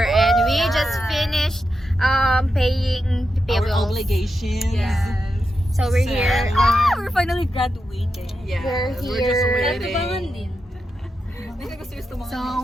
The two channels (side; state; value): both; normal; correlation 0.88